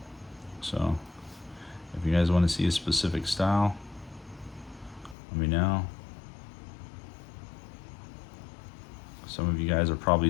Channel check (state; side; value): drops out; right; at 5.2 s